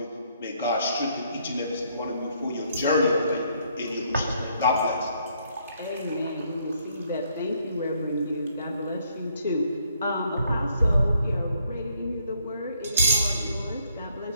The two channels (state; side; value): inverted; both; correlation -0.70